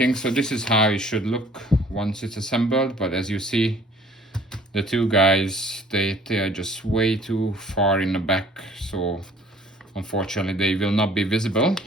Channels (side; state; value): both; normal; correlation 0.54